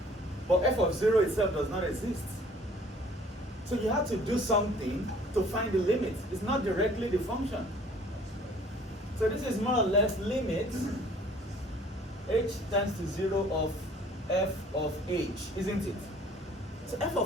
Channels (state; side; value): normal; both; correlation 0.54